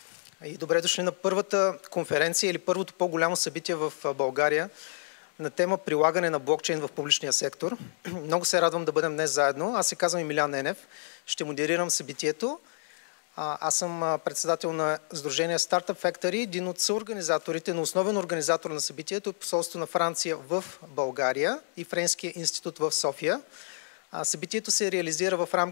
и добре дошли на първата конференция или първото по-голямо събитие в България на тема прилагане на блокчейн в публичния сектор. Много се радвам да бъдем днес заедно. Аз се казвам Емилиан Енев, ще модерирам събитието. Аз съм председател на Сдружение Startup Factory, един от съорганизаторите, но основен организатор на събитието е посолство на Франция в България и Френския институт в София. Събитието се реализира в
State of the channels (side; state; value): right; silent; digital silence